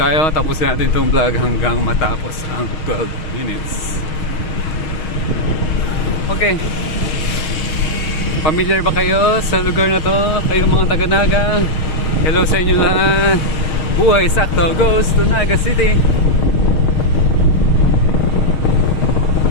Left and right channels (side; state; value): right; late; 6.4 ms